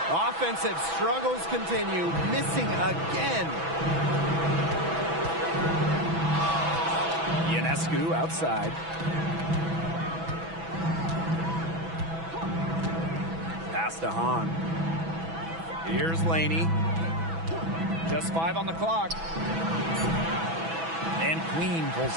Offensive struggles continue, missing again. Ionescu outside. Pass to Hahn. Here's Laney. Just 5 on the clock. And Queen pulls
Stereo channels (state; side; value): late; left; 6.1 ms